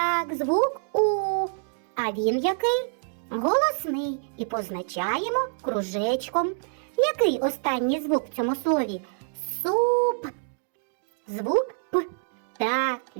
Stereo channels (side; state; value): left; silent; digital silence